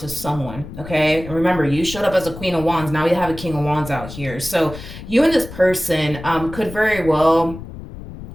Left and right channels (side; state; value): left; noise; rumble, 13 dB below the sound